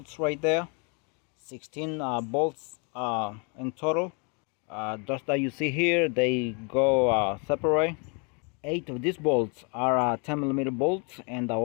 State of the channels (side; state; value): right; quieter; 34.7 dB